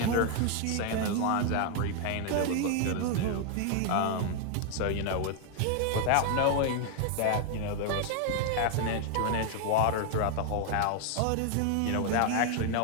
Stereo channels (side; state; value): both; different; correlation 0.01